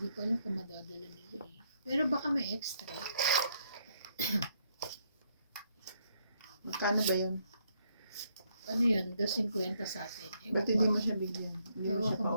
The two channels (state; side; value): inverted; both; correlation -0.73